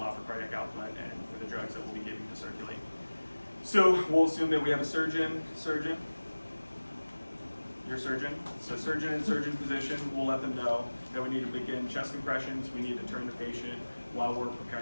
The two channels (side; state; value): both; inverted; correlation -1.00